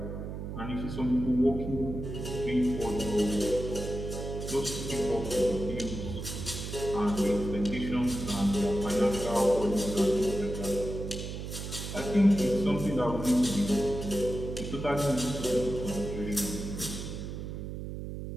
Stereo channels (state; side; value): noise; right; hum, 7 dB below the sound